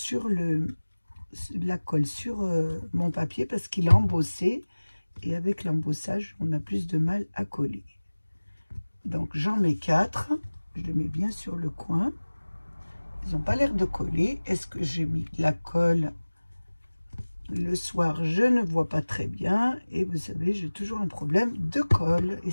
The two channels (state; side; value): inverted; both; correlation -1.00